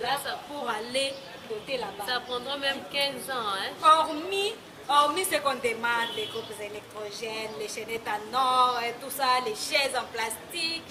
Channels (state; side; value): identical; both; correlation 1.00